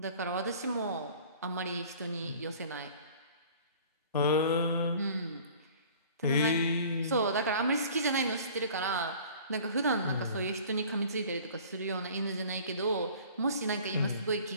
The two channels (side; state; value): both; inverted; correlation -0.47